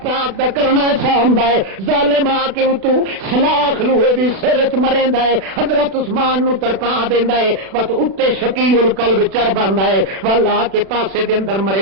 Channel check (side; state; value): left; late; 36 ms